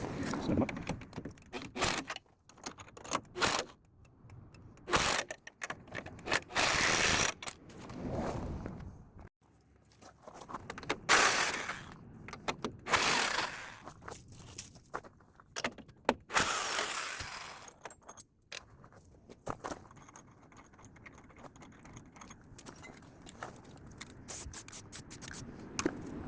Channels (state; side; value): identical; both; correlation 1.00